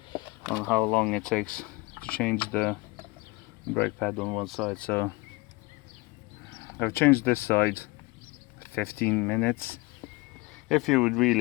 on how long it takes to change the brake pad on one side. So I've changed this side 15 minutes. If you would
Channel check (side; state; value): right; quieter; 23.8 dB